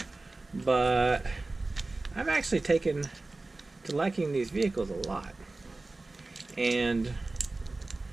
But I've actually taken to liking these vehicles a lot. And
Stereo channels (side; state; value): left; quieter; 3.2 dB